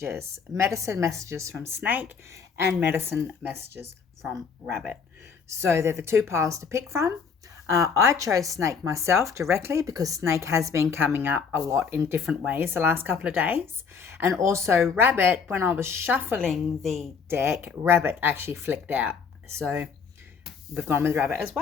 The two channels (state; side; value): quieter; right; 5.9 dB